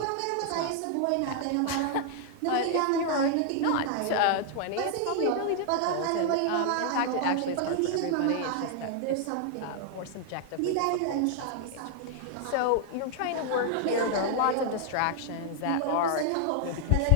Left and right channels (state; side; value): different; both; correlation 0.00